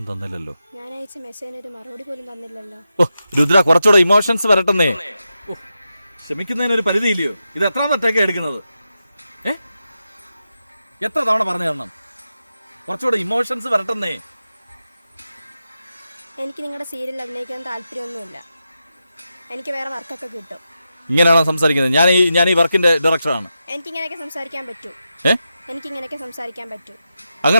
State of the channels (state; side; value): inverted; both; correlation -0.89